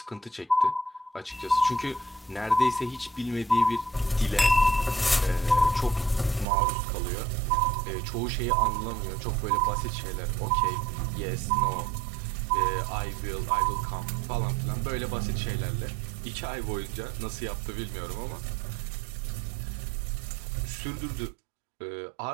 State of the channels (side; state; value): left; drops out; at 6.5 s